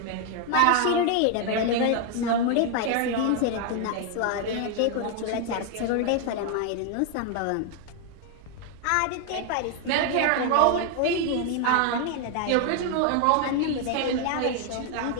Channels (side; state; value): both; different; correlation 0.00